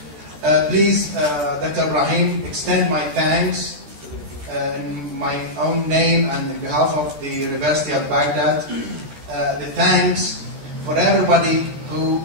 Please, Dr. Ibrahim, extend my thanks in my own name and on behalf of the University of Baghdad. The thanks for everybody who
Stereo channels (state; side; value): late; left; 14 ms